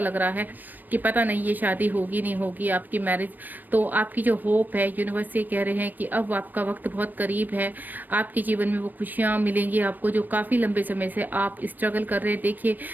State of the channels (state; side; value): late; left; 0.089 ms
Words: रहा है कि पता नहीं ये शादी होगी नहीं होगी, आपकी मैरिज। तो आपकी जो होप है, यूनिवर्स से कह रहे हैं कि अब आपका वक्त बहुत करीब है, आपके जीवन में वो खुशियाँ मिलेंगी आपको जो काफ़ी लंबे समय से आप स्ट्रगल कर रहे हैं। देखिए,